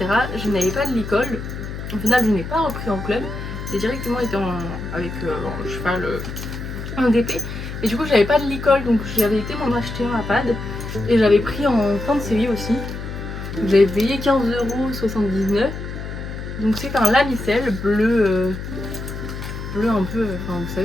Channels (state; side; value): noise; left; hum, 8 dB below the sound